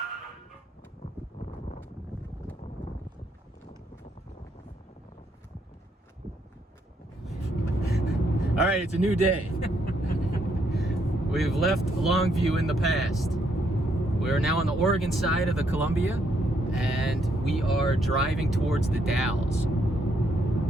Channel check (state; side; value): normal; both; correlation 0.74